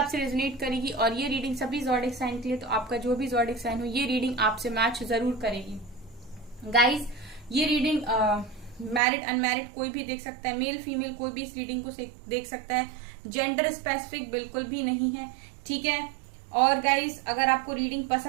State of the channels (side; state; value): left; drops out; at 9.0 s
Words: रेजोनेट करेगी। और ये रीडिंग सभी ज़ोडिक साइन के लिए, तो आपका जो भी ज़ोडिक साइन हो ये रीडिंग आपसे मैच जरूर करेगी। गाइस, ये रीडिंग मैरिड अनमैरिड कोई भी देख सकता है, मेल फीमेल कोई भी इस रीडिंग को देख सकता है। जेंडर स्पेसिफिक बिल्कुल भी नहीं है, ठीक है। और गाइस, अगर आपको रीडिंग